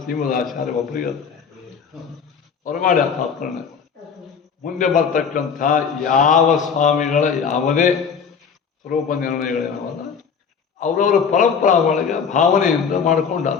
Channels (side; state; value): right; quieter; 6.5 dB